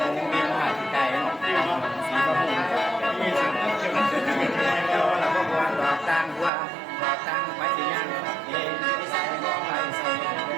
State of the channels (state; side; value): drops out; left; at 6.5 s